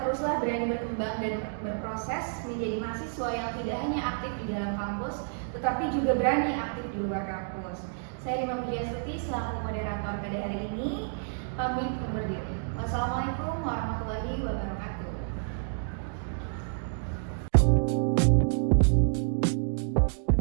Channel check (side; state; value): left; silent; digital silence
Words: berani berkembang dan berproses menjadi mahasiswa yang tidak hanya aktif di dalam kampus, tetapi juga berani aktif di luar kampus. Saya Rima Pujiastuti selaku moderator pada hari ini, pamit undur diri. Wassalamualaikum warahmatullahi wabarakatuh.